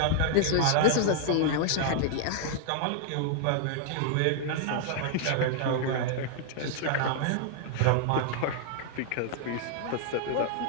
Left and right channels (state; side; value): different; both; correlation -0.01